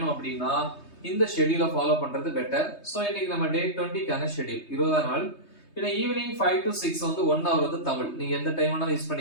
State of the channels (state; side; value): late; right; 3.2 ms